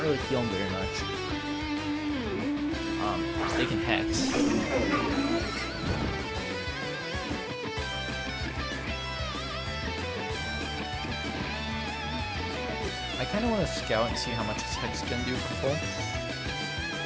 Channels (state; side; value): identical; both; correlation 1.00